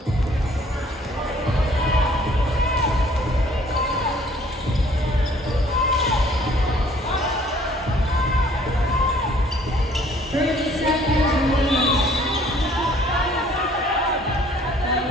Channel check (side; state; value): both; normal; correlation 0.58